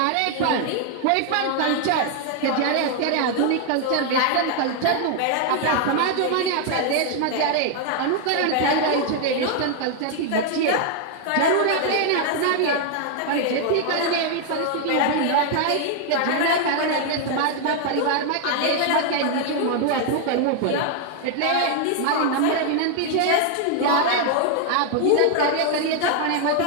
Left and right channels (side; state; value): both; different; correlation 0.00